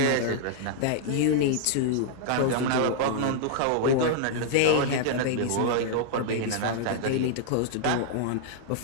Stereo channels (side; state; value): both; different; correlation -0.01